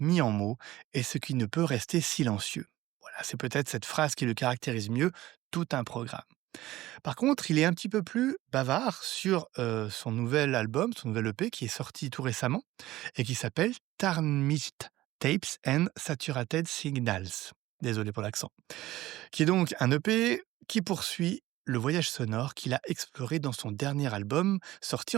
en mots et ce qui ne peut rester silencieux ». Voilà, c'est peut-être cette phrase qui le caractérise mieux, tout un programme. Par contre, il est un petit peu plus bavard sur son nouvel album, son nouvel EP qui est sorti tout récemment et qui s'appelle Tarnished Tapes and Saturated Signals. Désolé pour l'accent. Qui est donc un EP qui poursuit le voyage sonore qu'il a exploré dans son dernier album sorti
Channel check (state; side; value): quieter; left; 16.4 dB